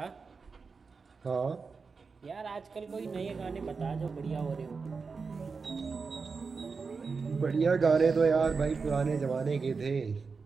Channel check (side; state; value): left; quieter; 4.8 dB